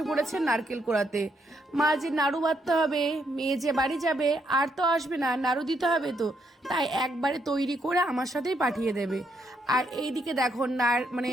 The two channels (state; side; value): normal; both; correlation 0.76